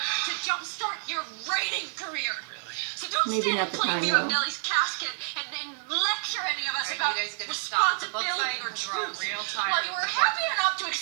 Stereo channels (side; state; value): left; silent; digital silence